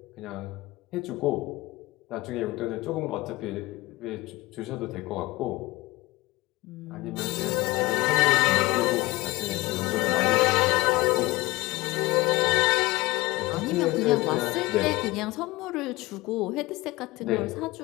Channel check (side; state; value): right; quieter; 20.8 dB